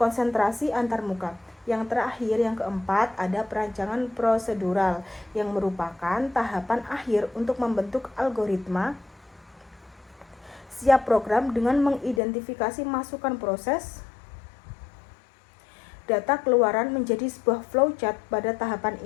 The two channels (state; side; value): drops out; right; at 12.2 s